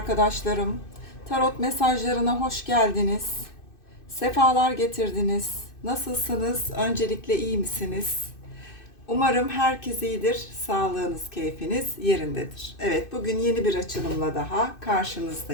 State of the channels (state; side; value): late; right; 2.6 ms